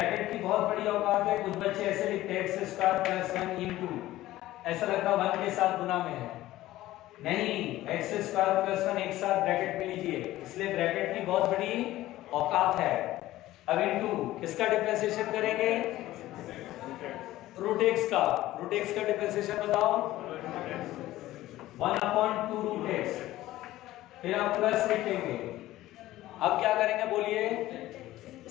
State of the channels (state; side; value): quieter; right; 15.7 dB